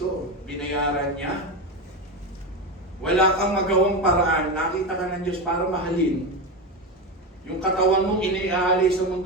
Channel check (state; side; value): normal; both; correlation 0.17